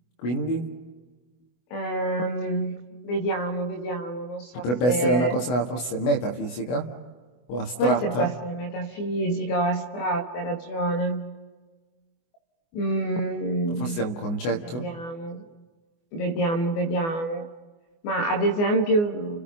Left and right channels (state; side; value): late; right; 24 ms